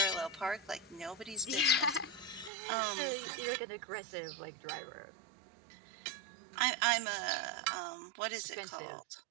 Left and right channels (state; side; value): drops out; left; at 2.5 s